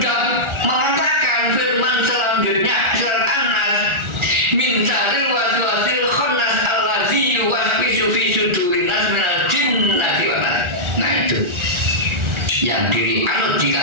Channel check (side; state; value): left; late; 1.4 ms